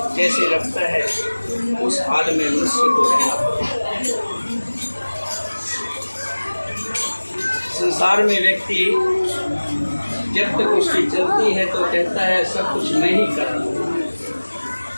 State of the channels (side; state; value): both; inverted; correlation -1.00